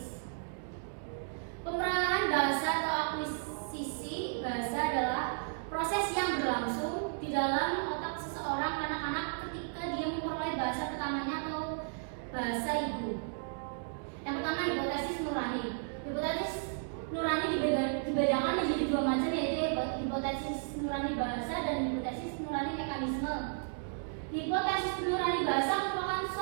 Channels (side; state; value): left; silent; digital silence